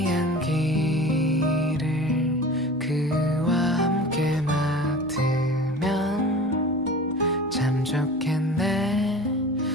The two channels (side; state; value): both; normal; correlation 0.38